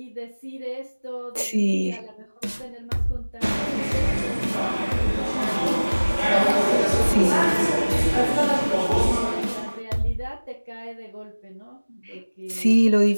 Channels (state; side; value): inverted; both; correlation -1.00